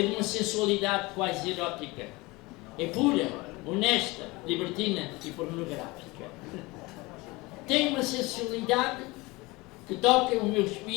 de uma sensualidade quase erótica. É pura, honesta, libertina e pornográfica. Tem uma sensualidade que toca o meu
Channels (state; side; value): quieter; right; 23.0 dB